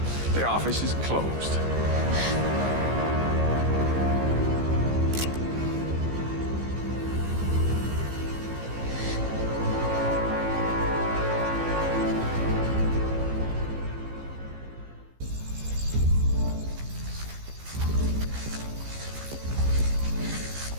The office is closed.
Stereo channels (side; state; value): left; late; 15 ms